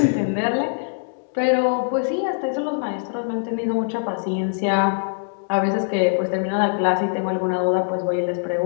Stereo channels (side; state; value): right; silent; digital silence